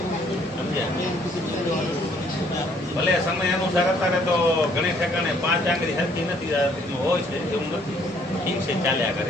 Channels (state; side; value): normal; both; correlation 0.63